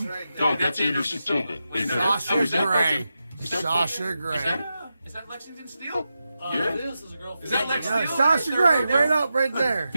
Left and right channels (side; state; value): both; inverted; correlation -0.90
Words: No, that's Anderson Silva. Sasha Grey. Sasha Grey. Is that Lexington Steel? It is. There's a girl. Is that Yeah, Sasha Grey, right up, right there.